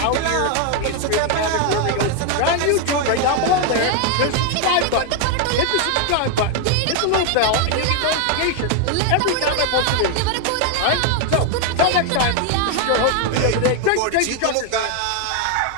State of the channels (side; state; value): both; different; correlation 0.01